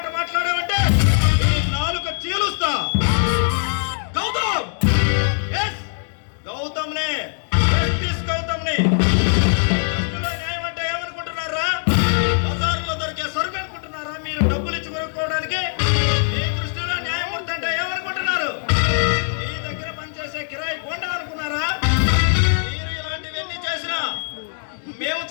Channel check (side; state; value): right; silent; digital silence